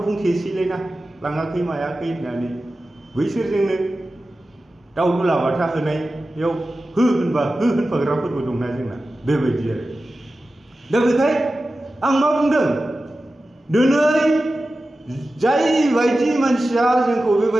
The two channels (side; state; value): both; normal; correlation 0.94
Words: बुंथेसैलायना लाङाखै मायाखै होननानै बैसोरजोंनो दाउ दुलाबाथा होनायाव हो होनबा हो होनफाग्राफोरबो दंना जोंना बेबायदि आरो दा बेखाय आं मा बुंदों दिनै जाय बायदि मानसिया जोंखौ